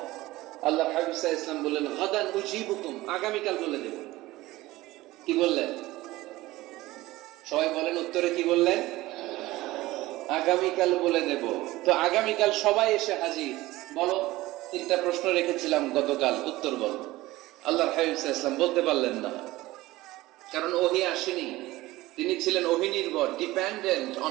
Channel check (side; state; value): left; quieter; 18.2 dB